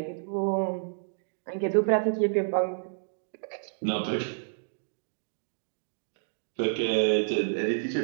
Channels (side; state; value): left; silent; digital silence